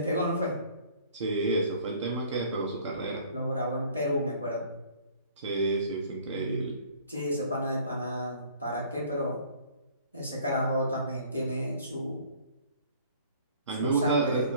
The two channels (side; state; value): both; inverted; correlation -0.53